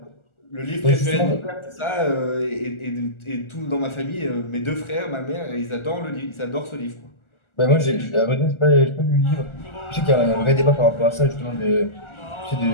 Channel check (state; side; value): late; right; 1.4 ms